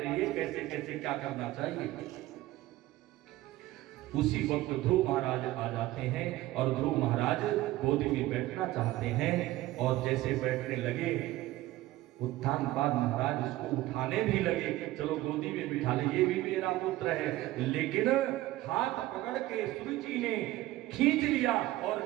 कैसे कैसे क्या करना चाहिए। उसी वक्त ध्रुव महाराज आ जाते हैं और ध्रुव महाराज गोदी में बैठना चाहते हैं, और जैसे बैठने लगे उत्तानपाद महाराज उसको उठाने भी लगे, चलो गोदी में बिठा ले, ये भी मेरा पुत्र है। लेकिन हाथ पकड़ के सुरुचि ने खींच लिया और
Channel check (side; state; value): left; quieter; 16.6 dB